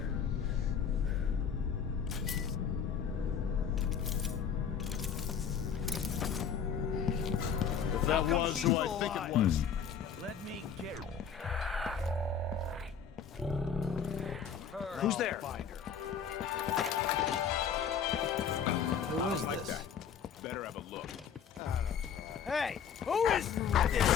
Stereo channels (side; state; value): right; quieter; 7.3 dB